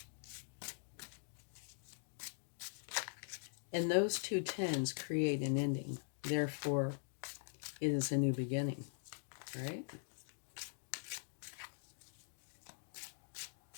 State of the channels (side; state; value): right; silent; digital silence